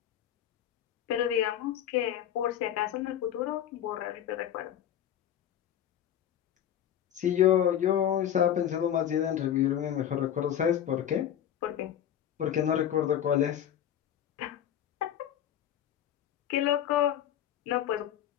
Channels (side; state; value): right; quieter; 10.4 dB